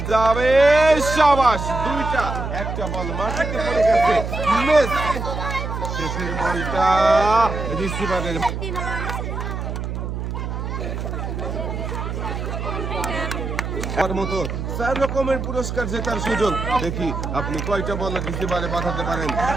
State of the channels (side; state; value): right; noise; hum, 4 dB below the sound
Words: যাবে, সাবাস। দুইটা, একটা বল মাটিতে পড়ে গেছে, মিস। শেষের বলটা রিসিভারের মতো 4 রকমের পুরস্কার জেতার সুযোগ। দেখি আপনি কয়টা বল রিসিভারে বাঁধাতে পারেন